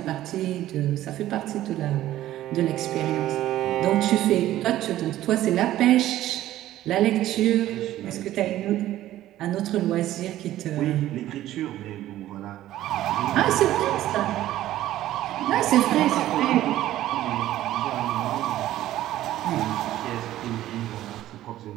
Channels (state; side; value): quieter; left; 14.0 dB